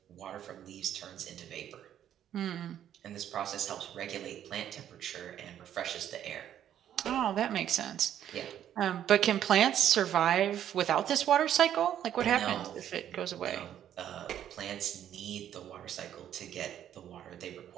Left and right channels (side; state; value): left; quieter; 10.5 dB